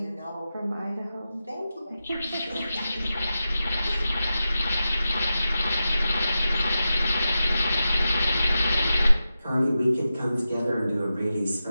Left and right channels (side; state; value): both; inverted; correlation -0.91